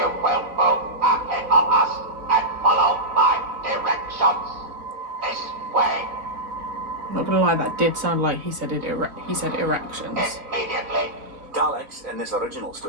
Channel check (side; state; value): left; late; 3.6 ms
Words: will move ahead of us and follow my directions. This way. I'm not gonna lie, that did sound like he said erections. Immediately. Daleks in this original